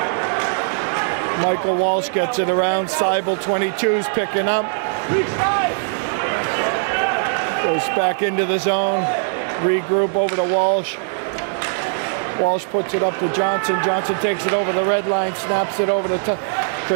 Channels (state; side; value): silent; left; digital silence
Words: Michael Walsh gets it around. Seibel, 22's picking up. Goes back into the zone. Regroup over to Walsh. Walsh puts it up to Johnson. Johnson takes it over the red line, snaps it over to